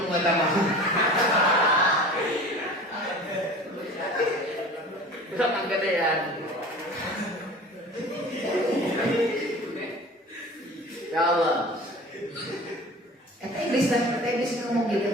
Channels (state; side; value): normal; both; correlation 0.40